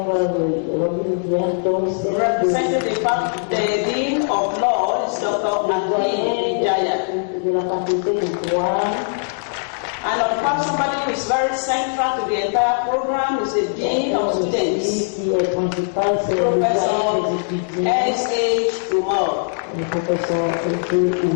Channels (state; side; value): silent; right; digital silence